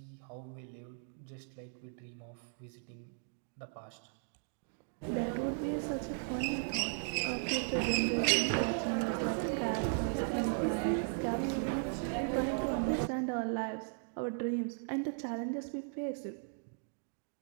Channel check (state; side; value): silent; left; digital silence